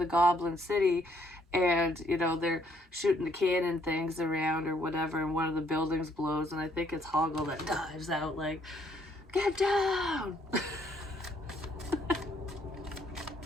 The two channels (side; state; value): both; normal; correlation 0.68